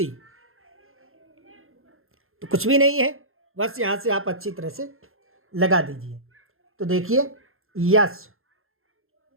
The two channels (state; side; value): late; left; 0.61 ms